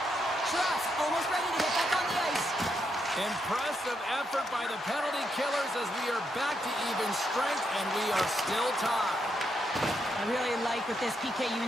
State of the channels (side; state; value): both; normal; correlation 0.80